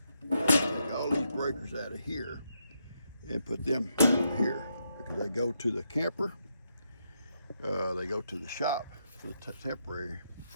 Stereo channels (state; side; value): inverted; both; correlation -0.80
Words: take all these breakers out of here, and put them over here because they go to the camper. They go to the shop for the temporary